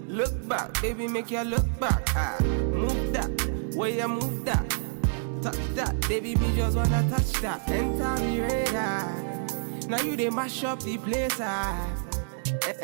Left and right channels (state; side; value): silent; left; digital silence